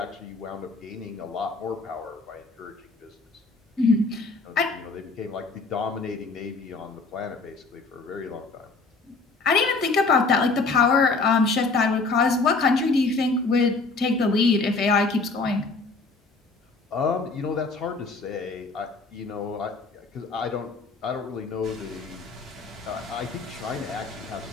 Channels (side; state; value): right; quieter; 3.9 dB